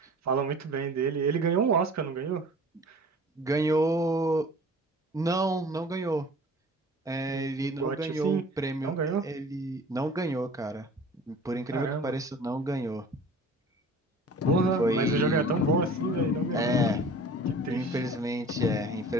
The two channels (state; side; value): normal; both; correlation 0.44